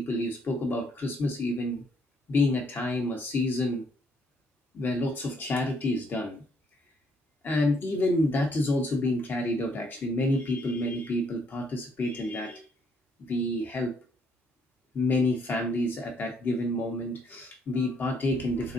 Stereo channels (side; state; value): both; normal; correlation 0.69